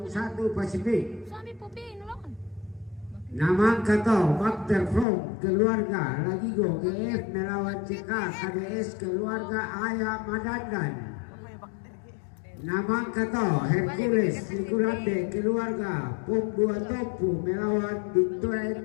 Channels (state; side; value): drops out; right; at 5.1 s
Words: Pasifik. Suami Popi nolongan. Namang Kato, Bakter From, keluarga Lagigo GF melawan CK KDS, keluarga Ayah Madandan. Namang Kato, Hercules, Nikulande, keluarga Pum 2 Topu melawan